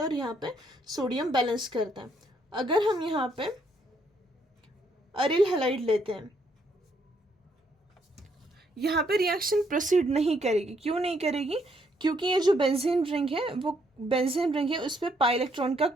है और यहाँ पे सोडियम बैलेंस करता है। अगर हम यहाँ पे अरिल हैलाइड लेते हैं, यहाँ पे रिएक्शन प्रोसीड नहीं करेगी। क्यों नहीं करेगी, क्योंकि ये जो बेंजीन रिंग है वो बेंजीन रिंग है, उस पर पाई इलेक्ट्रॉन का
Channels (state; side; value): normal; both; correlation 0.71